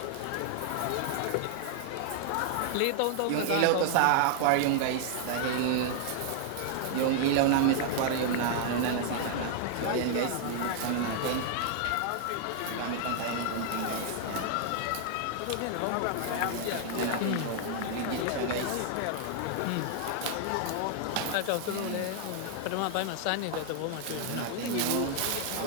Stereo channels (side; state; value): both; different; correlation 0.00